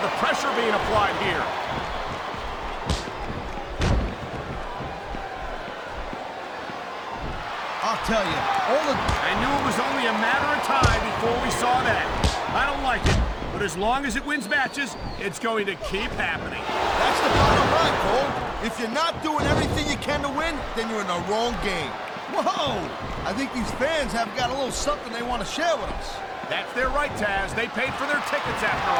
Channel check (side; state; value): both; identical; correlation 1.00